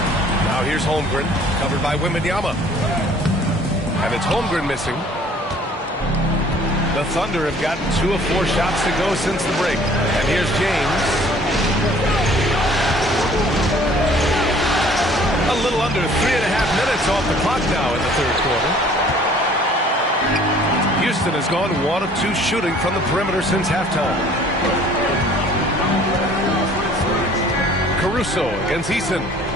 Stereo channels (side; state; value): both; normal; correlation 0.54